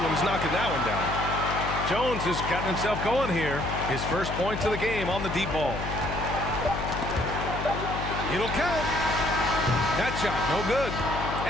knocking that one down. Jones has gotten himself going here. His first points of the game on the deep ball. It'll count. That shot, no good.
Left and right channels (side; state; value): left; noise; hum, 6 dB below the sound